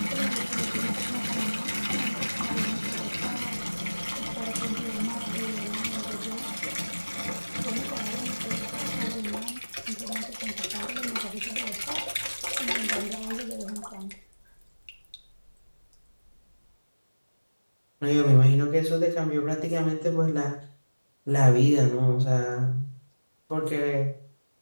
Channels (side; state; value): both; inverted; correlation -1.00